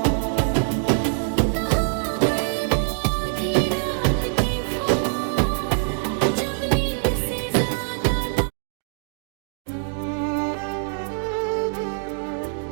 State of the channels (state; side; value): silent; left; digital silence